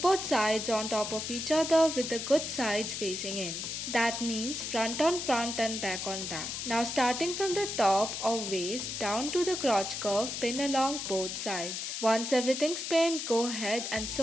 sides on top of each other with the good sides facing in. That means front on front and back on back. Now starting from the top of waist down to the crotch curve, pin along both sides. Once everything's pinned, go ahead and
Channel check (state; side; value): noise; left; hiss, 5 dB below the sound